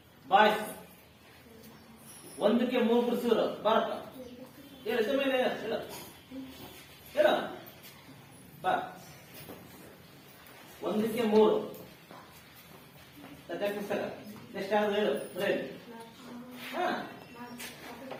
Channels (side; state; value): both; identical; correlation 1.00